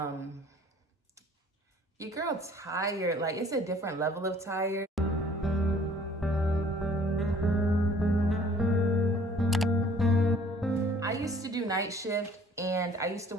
girl tired, like it's a different level of tired. I used to do night shift and I used to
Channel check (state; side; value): normal; both; correlation 0.55